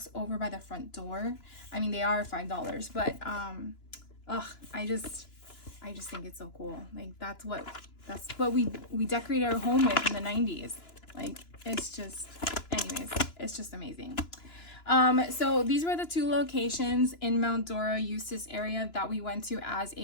over by the front door. I mean, they are $5, but I just think it's so cool. Like, that's what we decorated our home with in the 90s. Like, it's just, anyways, it's just amazing. So these were the two locations in Mount Dora, Eustis area that we went to as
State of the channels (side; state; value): right; late; 2.9 ms